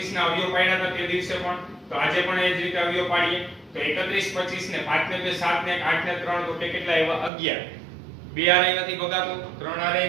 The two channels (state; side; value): drops out; left; at 7.3 s